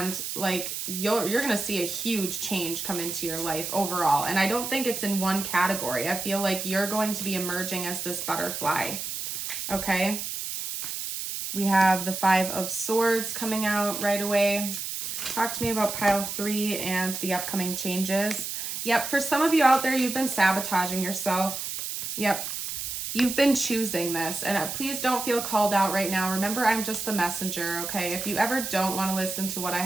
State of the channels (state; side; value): noise; right; hiss, 5 dB below the sound